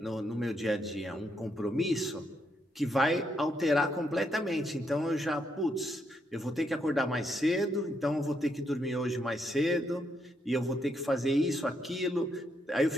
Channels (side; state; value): both; normal; correlation 0.77